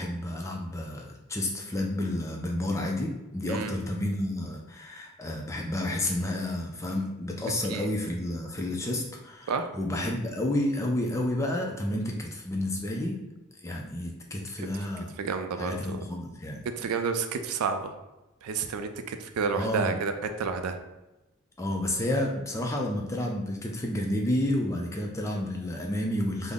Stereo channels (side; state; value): both; normal; correlation 0.55